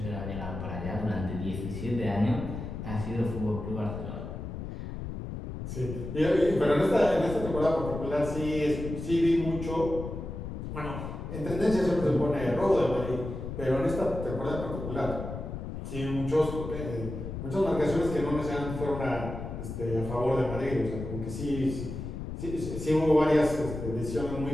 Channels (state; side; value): noise; left; rumble, 7 dB below the sound